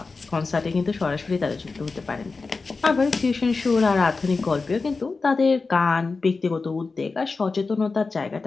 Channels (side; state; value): right; quieter; 4.1 dB